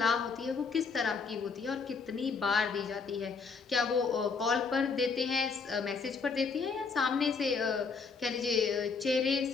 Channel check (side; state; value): right; quieter; 5.0 dB